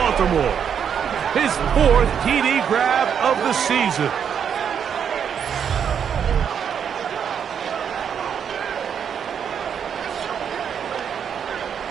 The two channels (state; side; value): quieter; left; 7.8 dB